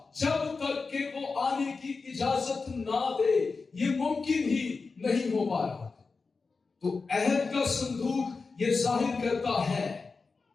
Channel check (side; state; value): right; quieter; 4.4 dB